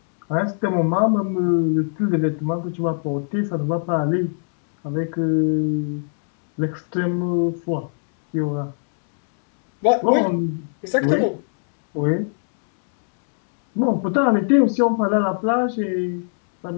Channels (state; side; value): silent; right; digital silence